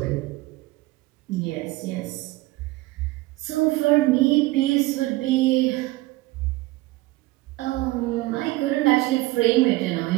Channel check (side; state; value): left; quieter; 19.7 dB